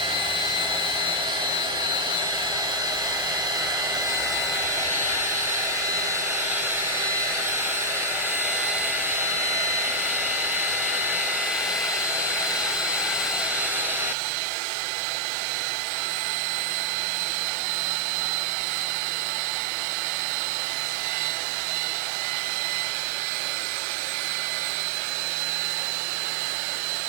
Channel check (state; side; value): drops out; left; at 14.2 s